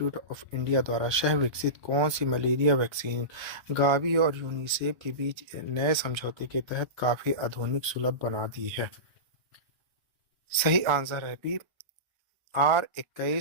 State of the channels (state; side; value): late; left; 1.3 ms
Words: ऑफ इंडिया द्वारा सह विकसित कौन सी मलेरिया वैक्सीन गावी और यूनिसेफ के बीच नए समझौते के तहत काफी आधुनिक सुलभ बना दी है? सही आंसर है बी